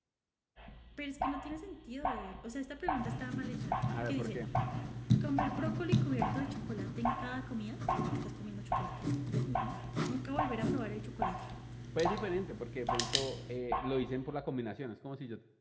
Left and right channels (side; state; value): both; identical; correlation 1.00